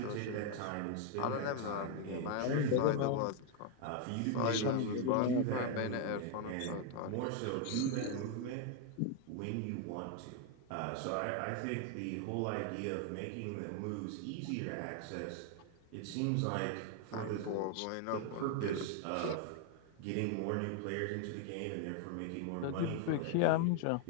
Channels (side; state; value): both; different; correlation 0.01